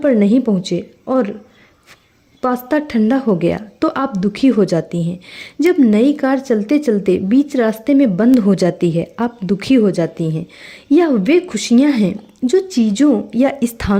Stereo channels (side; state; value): both; identical; correlation 1.00